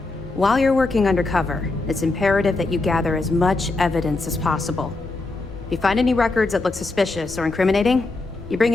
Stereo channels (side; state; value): right; quieter; 3.3 dB